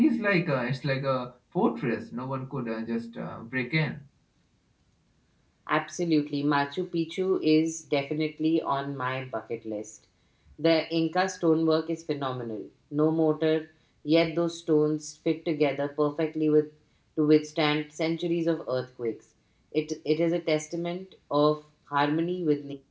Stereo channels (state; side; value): identical; both; correlation 1.00